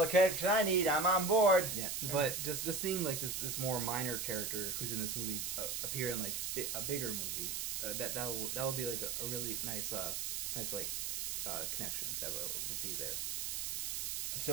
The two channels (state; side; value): noise; right; hiss, 2 dB below the sound